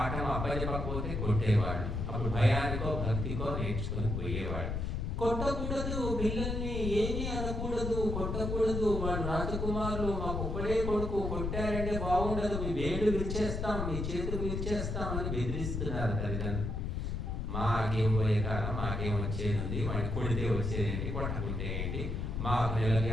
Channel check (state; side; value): noise; left; rumble, 2 dB below the sound